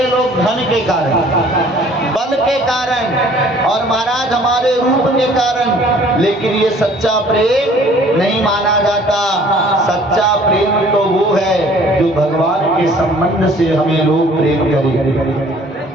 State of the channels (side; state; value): both; normal; correlation 0.54